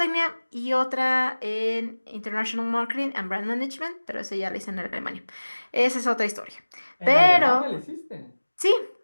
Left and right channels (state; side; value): inverted; both; correlation -1.00